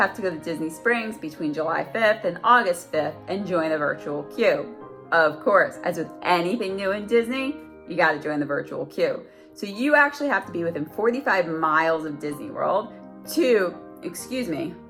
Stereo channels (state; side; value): identical; both; correlation 1.00